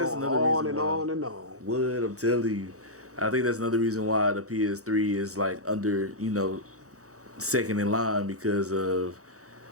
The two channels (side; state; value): left; late; 0.65 ms